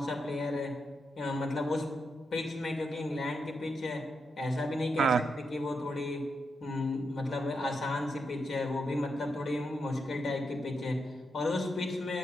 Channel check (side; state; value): both; normal; correlation 0.84